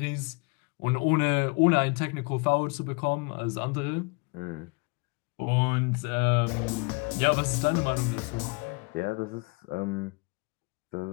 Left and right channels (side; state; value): right; quieter; 30.0 dB